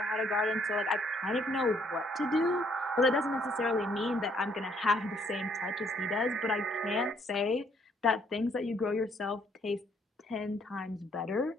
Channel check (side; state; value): both; normal; correlation 0.67